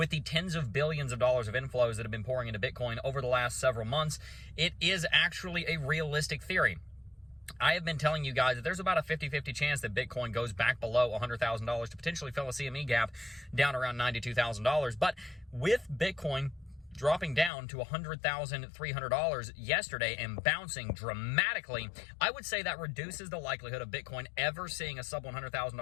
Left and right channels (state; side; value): drops out; right; at 17.5 s